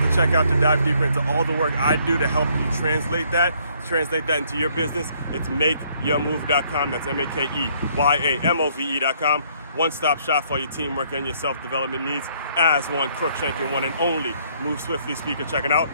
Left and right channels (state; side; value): inverted; both; correlation -0.66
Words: to check out to dive deeper into all the work I do to help you translate that into your business. It's makeyourmove.com. That's MakeYamove.com. One-stop shop for your teamwork and your self-development needs as one Crookshank, one and only Move Swiftly speaker checking out.